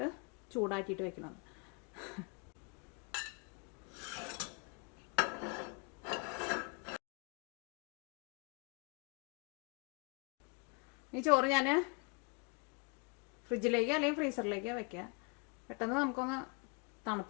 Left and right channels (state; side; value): quieter; right; 33.9 dB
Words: ചൂടാക്കിയിട്ട് വെക്കണമെന്ന്. ഈ ചോറ് ഞാൻ ഫ്രിഡ്ജിലേക്ക് അല്ലെങ്കിൽ ഫ്രീസറിലേക്ക് വെക്കുക. പെട്ടെന്ന് നമുക്കൊന്ന്